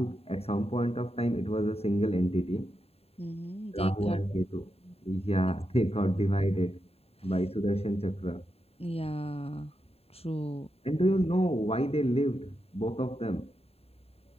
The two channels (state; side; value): late; right; 0.29 ms